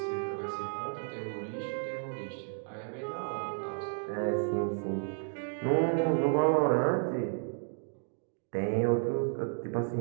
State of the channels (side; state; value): left; silent; 56 dB below the other